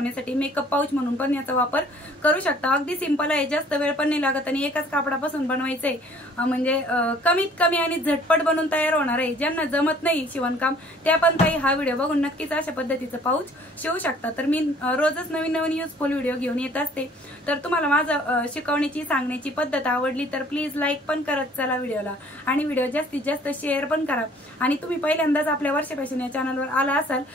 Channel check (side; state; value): both; normal; correlation 0.55